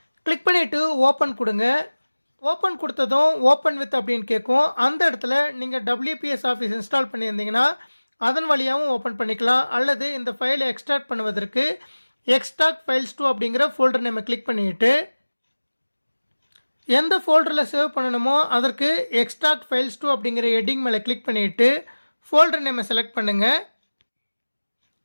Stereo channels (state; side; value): inverted; both; correlation -1.00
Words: கிளிக் பண்ணிவிட்டு ஓப்பன் கொடுங்க. ஓப்பன் கொடுத்ததும் ஓப்பன் வித் அப்படின்னு கேட்கும். அந்த இடத்துல நீங்கள் WPS ஆஃபீஸ் இன்ஸ்டால் பண்ணியிருந்தீங்கன்னா அதன் வழியாகவும் ஓப்பன் பண்ணிக்கலாம். அல்லது இந்த ஃபைலை எக்ஸ்ட்ராக்ட் பண்ணுவதற்கு எக்ஸ்ட்ராக்ட் ஃபைல்ஸ் 2 அப்படிங்கிற ஃபோல்டர் நேமை கிளிக் பண்ணிவிட்டு எந்த ஃபோல்டரில் சேவ் பண்ணணுமோ அதற்கு எக்ஸ்ட்ராக்ட் ஃபைல்ஸ் 2 அப்படிங்கிற ஹெட்டிங் மேலே கிளிக் பண்ணிவிட்டு ஃபோல்டர் நேமை செலக்ட் பண்ணுங்கள்.